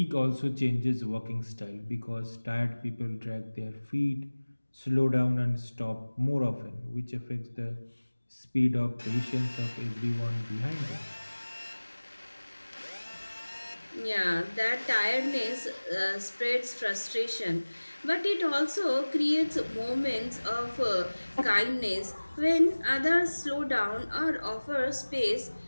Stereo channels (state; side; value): inverted; both; correlation -1.00